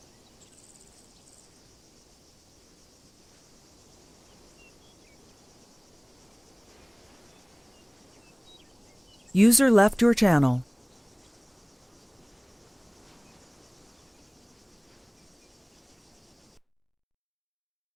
User left your channel.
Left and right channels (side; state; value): both; identical; correlation 1.00